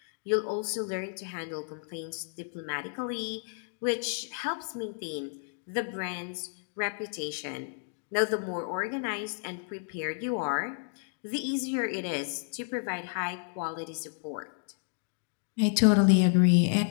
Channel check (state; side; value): silent; right; digital silence